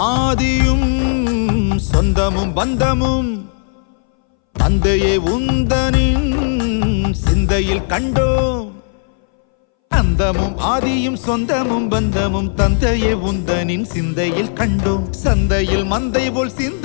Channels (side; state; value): right; silent; 65 dB below the other